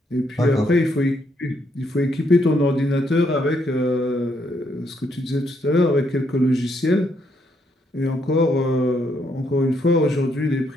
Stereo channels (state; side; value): normal; both; correlation 0.74